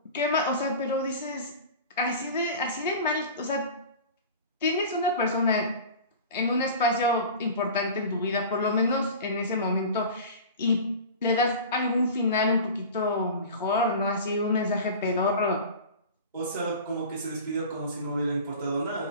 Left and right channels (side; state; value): both; inverted; correlation -0.36